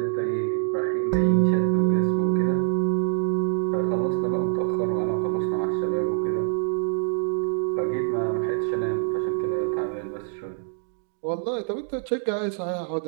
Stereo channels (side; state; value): left; silent; digital silence